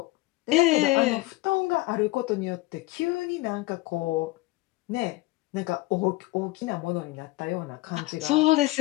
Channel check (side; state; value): right; quieter; 20.2 dB